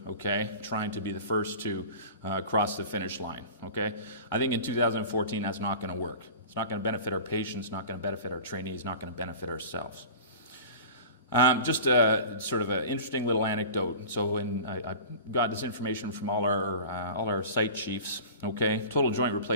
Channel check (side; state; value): both; inverted; correlation -0.37